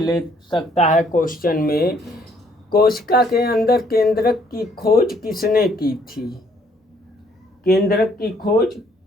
सकता है क्वेश्चन में, कोशिका के अंदर केंद्रक की खोज किसने की थी? केंद्रक की खोज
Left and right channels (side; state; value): both; normal; correlation 0.65